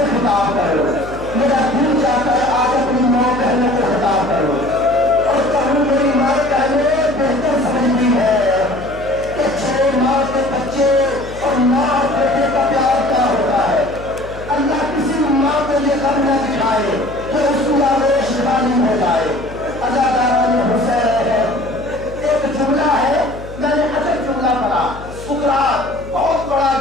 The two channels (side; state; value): left; noise; hum, 15 dB below the sound